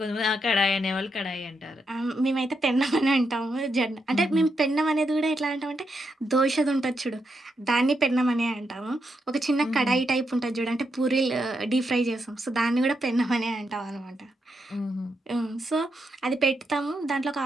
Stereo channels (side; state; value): both; normal; correlation 0.82